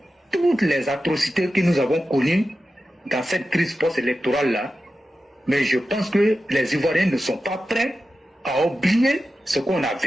toutes les atrocités que nous avons connues dans cette crise post-électorale-là, mais je pense que les Ivoiriens ne sont pas prêts à oublier ce qu'on a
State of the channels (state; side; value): normal; both; correlation 0.92